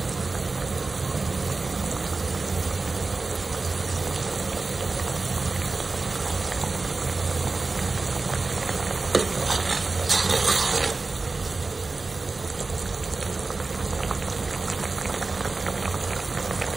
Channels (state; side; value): quieter; left; 3.7 dB